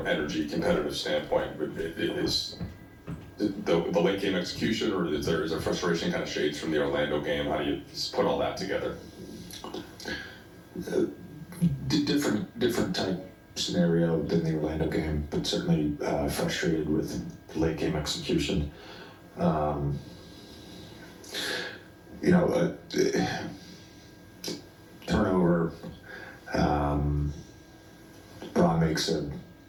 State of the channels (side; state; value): both; identical; correlation 1.00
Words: competitive standpoint. But is the late game execution, or is there frustration kind of shades from the Orlando game? How do you put all that together? Different type scenario than the Orlando game, but certainly frustrated with late game execution. Turnover. Braun makes a